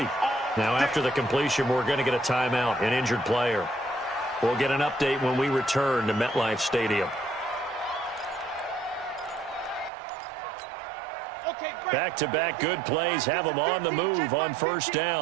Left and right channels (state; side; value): drops out; left; at 9.9 s